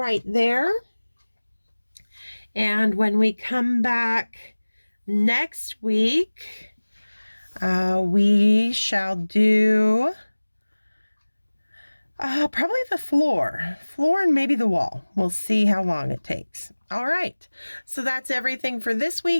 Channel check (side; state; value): both; inverted; correlation -1.00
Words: there. And when we come back next week, we shall do probably the floor and maybe the wall. We'll see how long it takes. All right. So that's everything for this